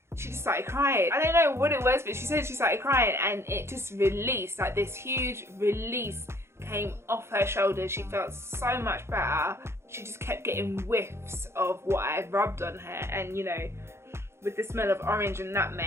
she just started crying. I don't know what it was, but she said she started crying, and it just released, like this huge release came off her shoulders. She felt so much better. She just kept getting whiffs of what I rubbed on her, and you know, with the smell of orange and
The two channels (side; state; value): left; late; 0.13 ms